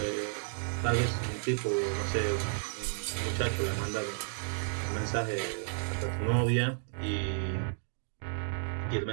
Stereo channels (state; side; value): silent; left; digital silence